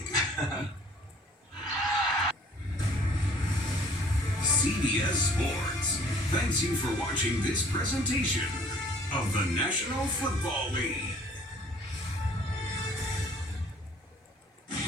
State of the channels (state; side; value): normal; both; correlation 0.55